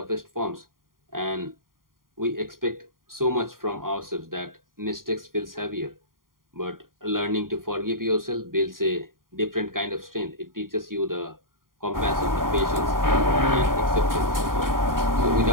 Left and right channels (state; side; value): late; left; 0.91 ms